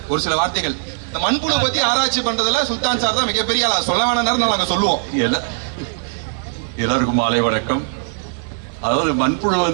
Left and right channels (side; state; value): left; silent; 66 dB below the other